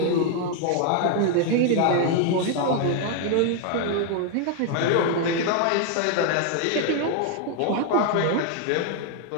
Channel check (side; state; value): both; different; correlation 0.00